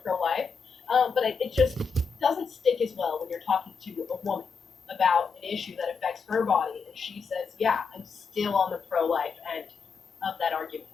pro-life. But it just doesn't stick as well when you're talking to a woman about an issue that affects her body, and she says, yeah, I'm still on the pro-life end of that argument.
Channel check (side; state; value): right; quieter; 5.4 dB